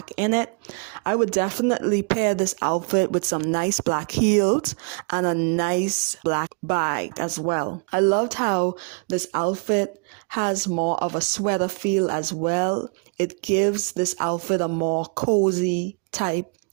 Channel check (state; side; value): quieter; left; 37.3 dB